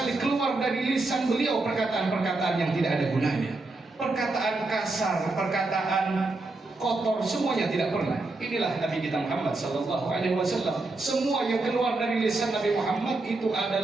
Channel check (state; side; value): quieter; left; 3.2 dB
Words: keluar dari lisan beliau perkataan-perkataan yang tidak ada gunanya. Perkataan kasar, perkataan kotor, semuanya tidak pernah. Inilah Nabi kita Muhammad Sallallahu Alaihi Wasallam. Semua yang keluar dari lisan Nabi Muhammad itu